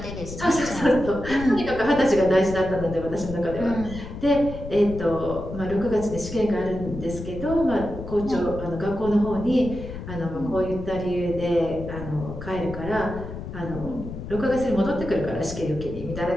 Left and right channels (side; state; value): left; noise; rumble, 10 dB below the sound